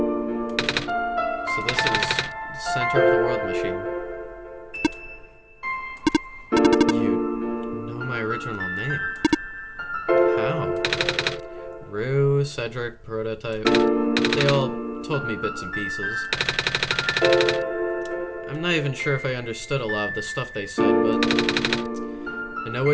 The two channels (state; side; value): identical; both; correlation 1.00